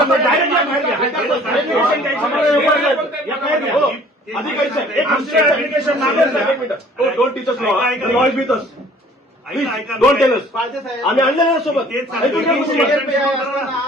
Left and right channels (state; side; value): normal; both; correlation 0.53